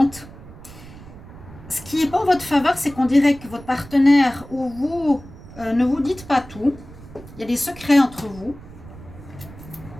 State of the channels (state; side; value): noise; right; rumble, 18 dB below the sound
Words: Ce qui n'est pas en votre faveur, c'est qu'on dirait que votre partenaire ou vous ne vous dites pas tout. Il y a des secrets entre vous.